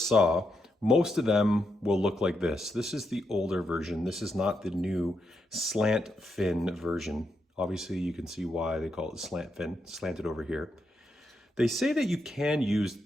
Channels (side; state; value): both; normal; correlation 0.82